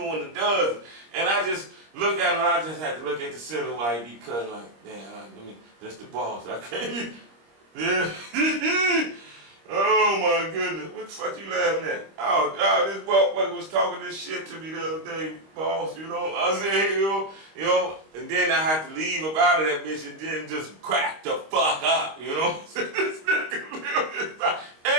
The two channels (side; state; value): left; late; 25 ms